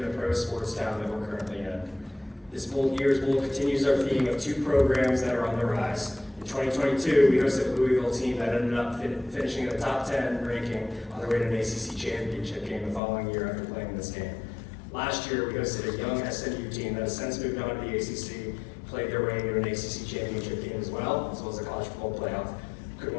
the pro sports town that we're currently in. This year's bowl continues our theme of two programs that are on the rise. In 2022, we hosted a Louisville team that ended up finishing in the top 10 ranking on their way to an ACC championship game the following year after playing this game. Last year, we hosted a young SMU team that has since moved on to the ACC, played their way into an ACC championship game as well as the college football playoff. Could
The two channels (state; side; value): drops out; right; at 13.0 s